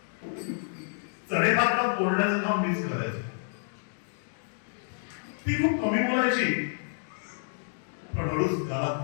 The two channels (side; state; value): right; silent; digital silence